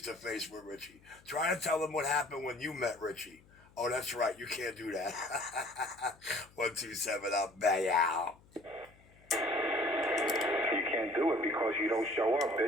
with Richie. Try to tell them what happened when you met Richie. Oh, that's right. You can't do that. 127, I'll bang out. You can't do it because you don't show up,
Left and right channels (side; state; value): left; noise; hum, 27 dB below the sound